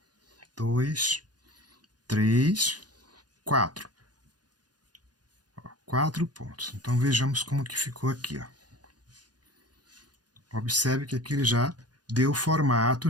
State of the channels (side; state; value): left; late; 0.69 ms